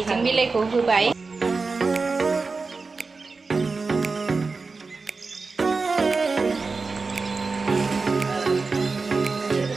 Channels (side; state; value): left; quieter; 4.2 dB